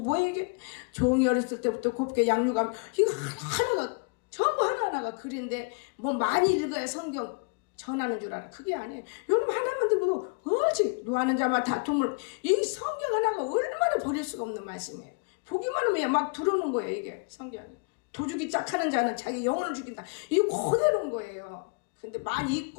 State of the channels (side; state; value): right; quieter; 33.6 dB